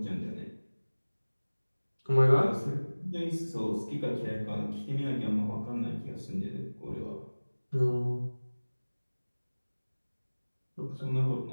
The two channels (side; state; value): both; inverted; correlation -1.00